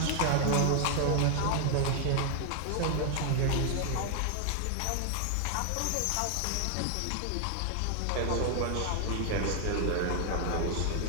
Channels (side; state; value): both; different; correlation 0.00